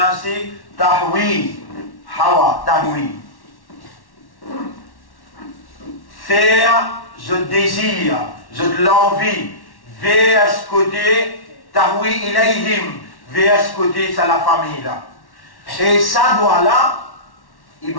تهوي faire, je désire, je l'envie, vers ce côté, tahwi ilayhim, vers ce côté, c'est la famille là. Et ça doit là,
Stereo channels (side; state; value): right; late; 1.1 ms